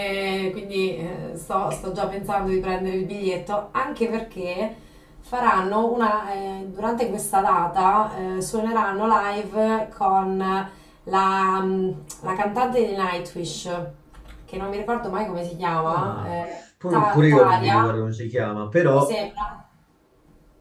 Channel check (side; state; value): both; identical; correlation 1.00